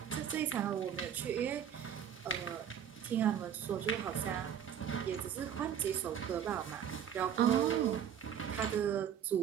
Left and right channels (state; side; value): quieter; left; 8.8 dB